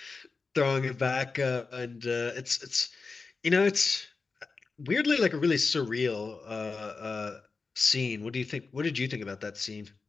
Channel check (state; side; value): quieter; right; 4.3 dB